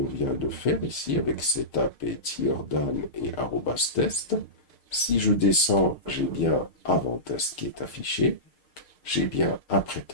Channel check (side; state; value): right; late; 6.6 ms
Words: vient de faire ici, avec setup et tierdan et @test, si je descends, j'ai bien avant test qui est affiché, j'ai bien après